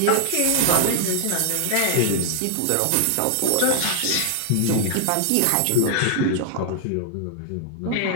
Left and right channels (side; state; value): both; different; correlation 0.00